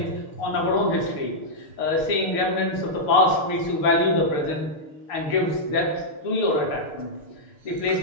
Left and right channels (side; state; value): right; late; 6.6 ms